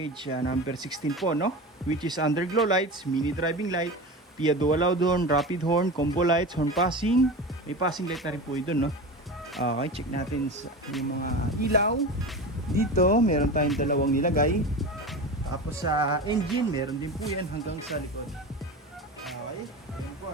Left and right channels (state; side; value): normal; both; correlation 0.28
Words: number 16 po, no? Which is underglow lights, mini driving light, PIA dual loud horn, rapid horn, combo lights, horn passing. May passing light na rin po yun, no? Okay, check natin yung mga ilaw. Dito, meron tayong dalawang nilagay. Tapos sa engine, meron din po yan hanggang sa likod. Okay, ayan po,